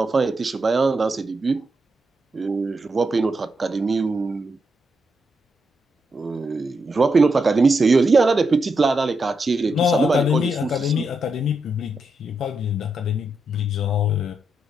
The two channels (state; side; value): normal; both; correlation 0.83